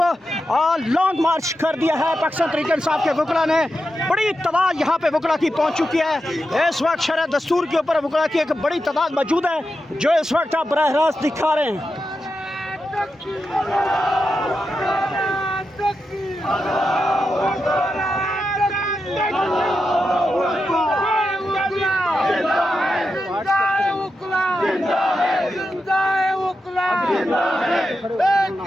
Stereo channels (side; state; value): both; normal; correlation 0.88